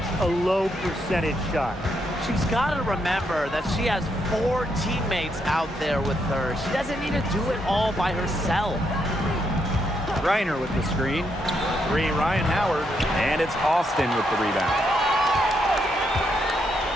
a low percentage shot. She's got to remember that she has 4 teammates out there with her. She doesn't need to do it all by herself. Griner with the screen. 3, Ryan Howard. And it's Austin with the rebound.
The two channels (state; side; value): normal; both; correlation 0.78